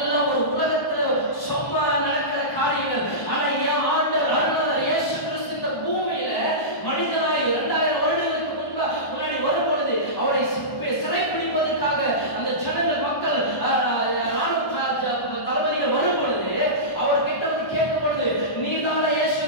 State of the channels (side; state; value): right; late; 1.1 ms